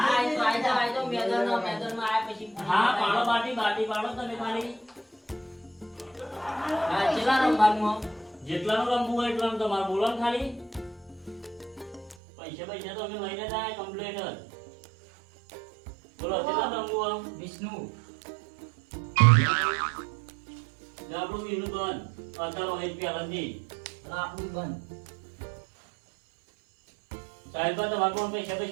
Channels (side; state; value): left; drops out; at 12.2 s